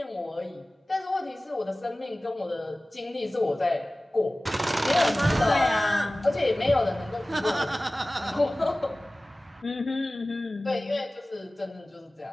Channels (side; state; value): both; normal; correlation 0.97